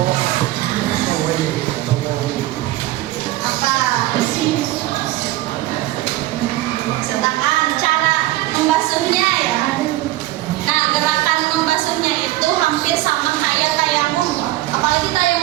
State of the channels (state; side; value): quieter; left; 16.7 dB